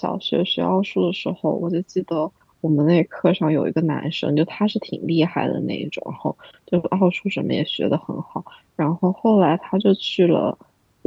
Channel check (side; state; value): both; identical; correlation 1.00